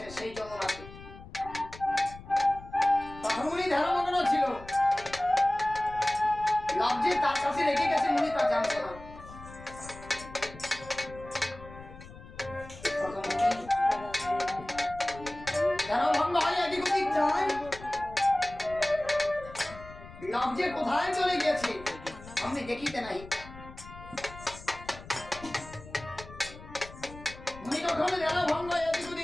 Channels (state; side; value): noise; left; rumble, 16 dB below the sound